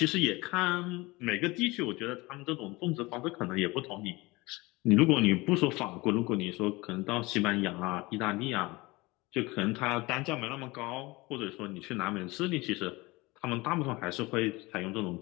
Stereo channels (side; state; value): right; quieter; 22.6 dB